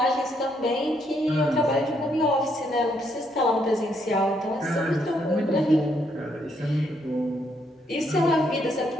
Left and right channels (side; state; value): both; normal; correlation 0.74